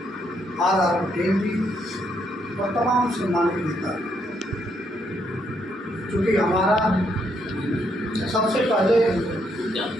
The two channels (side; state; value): both; normal; correlation 0.74